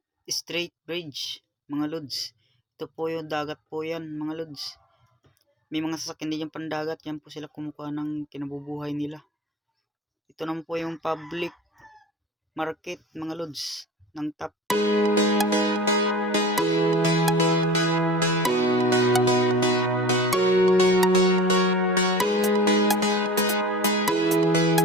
Strait Bridge mga lods. Ito po yung dagat po yan mga lods. May mga sasakyan din yung pandagat, yan po sila kumukuha ng kinabubuhay nila. Ito naman po yung public market mga lods ng Top.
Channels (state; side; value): normal; both; correlation 0.39